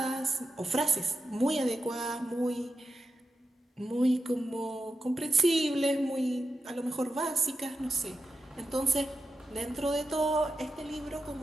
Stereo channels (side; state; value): both; normal; correlation 0.89